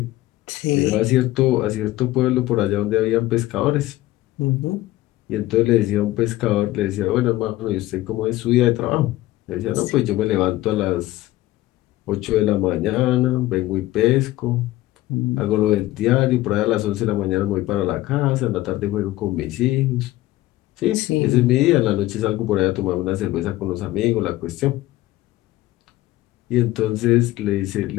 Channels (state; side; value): quieter; right; 16.7 dB